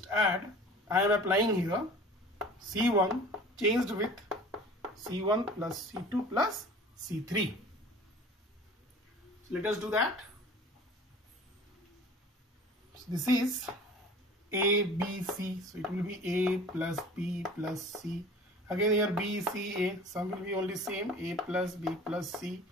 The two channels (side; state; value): both; normal; correlation 0.43